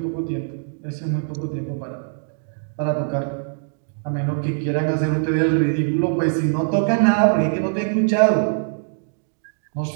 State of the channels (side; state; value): left; silent; digital silence